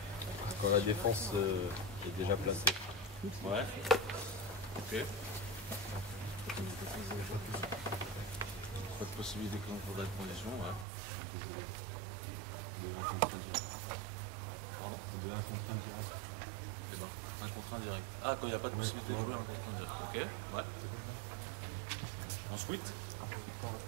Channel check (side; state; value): left; drops out; at 10.9 s